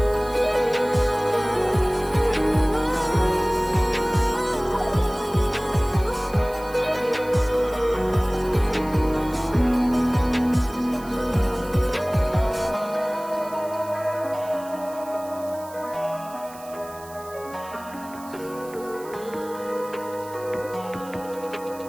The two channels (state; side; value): noise; right; hiss, 20 dB below the sound